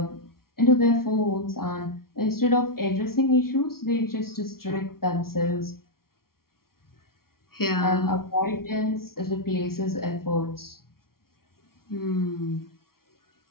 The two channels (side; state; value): right; late; 0.93 ms